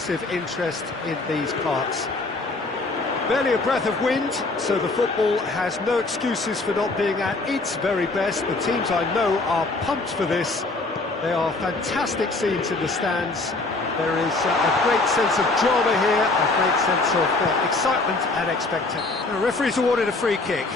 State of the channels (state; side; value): quieter; right; 3.3 dB